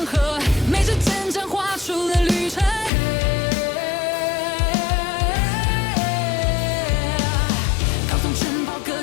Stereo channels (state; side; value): drops out; right; at 2.9 s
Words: 河，每支针针画出了旅程。高耸城堡隔